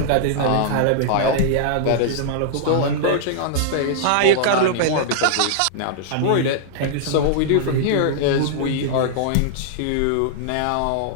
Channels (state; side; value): different; both; correlation -0.01